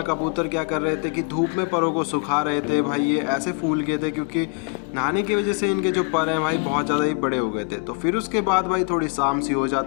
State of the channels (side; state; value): right; quieter; 33.4 dB